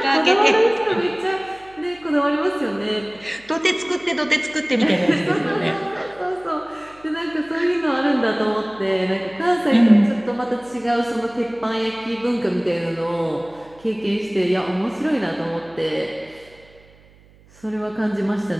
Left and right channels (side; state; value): right; noise; hum, 27 dB below the sound